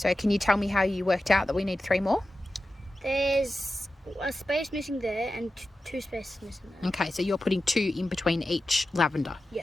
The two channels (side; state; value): both; normal; correlation 0.92